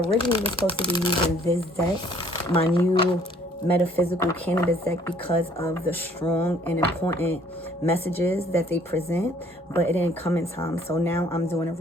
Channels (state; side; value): normal; both; correlation 0.59